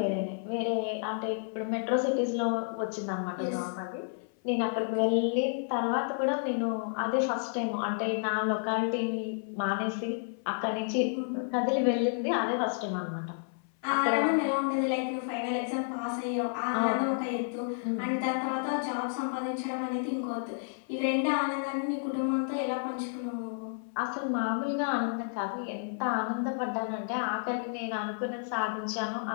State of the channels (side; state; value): right; silent; 57 dB below the other